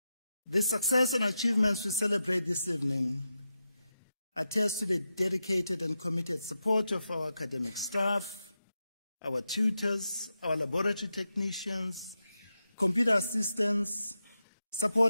The success and achievements we celebrate this evening attest to the dedicated and committed support of our academic staff, our tutors, our laboratory technicians, computer assistants,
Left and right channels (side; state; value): both; inverted; correlation -0.88